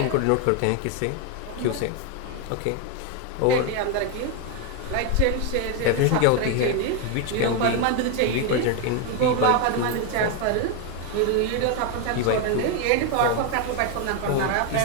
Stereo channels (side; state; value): both; different; correlation 0.01